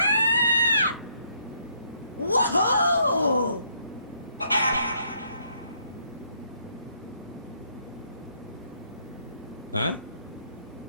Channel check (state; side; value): inverted; both; correlation -0.70